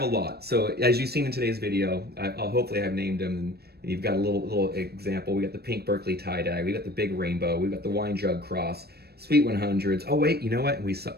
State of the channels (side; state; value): left; late; 0.47 ms